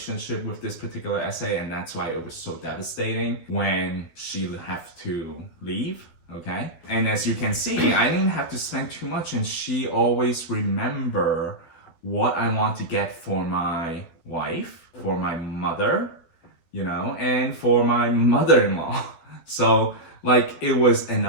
with this particular essay, and that's why it was so devastating when she had to leave. Okay? And as you can see, I didn't have to spend too much, and she always remember what I want to get for my wife, for my mother, and for my mother-in-law. So it was an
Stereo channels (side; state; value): right; late; 12 ms